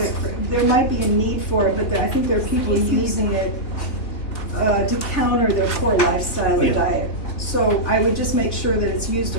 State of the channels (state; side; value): late; right; 3.5 ms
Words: there might be a need for it, but I think there are people using it to counter their poor lifestyle or Yeah. diet. So I would just make sure that it's used